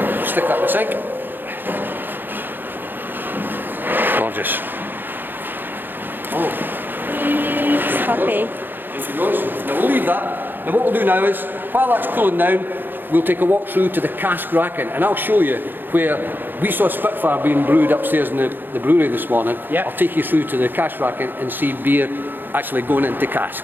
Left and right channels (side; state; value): left; late; 0.094 ms